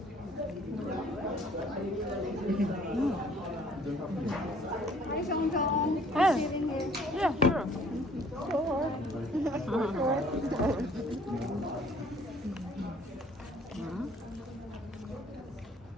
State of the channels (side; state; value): both; normal; correlation 0.57